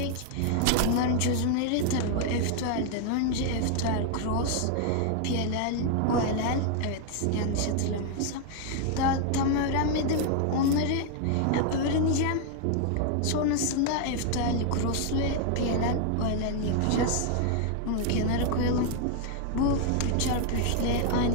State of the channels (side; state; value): both; different; correlation 0.00